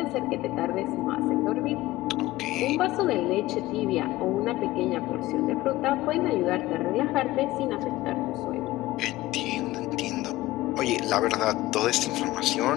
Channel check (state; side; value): quieter; right; 17.6 dB